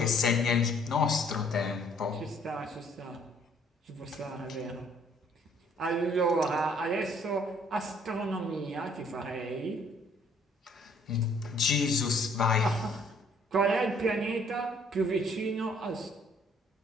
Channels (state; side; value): normal; both; correlation 0.62